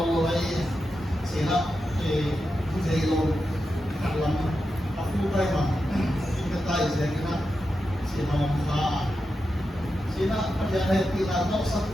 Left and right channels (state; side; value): normal; both; correlation 0.89